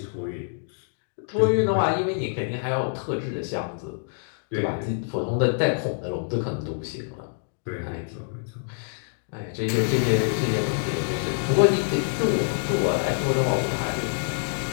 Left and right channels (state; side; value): silent; right; digital silence